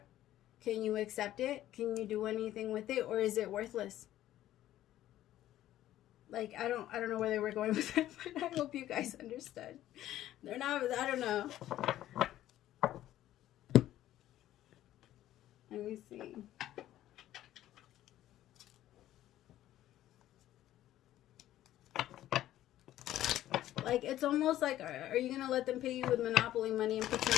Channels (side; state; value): right; quieter; 13.4 dB